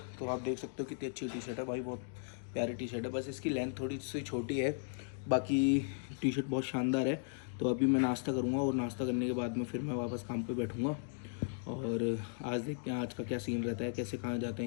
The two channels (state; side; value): silent; right; digital silence